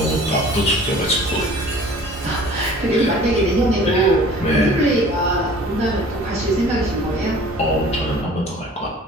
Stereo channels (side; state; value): both; normal; correlation 0.47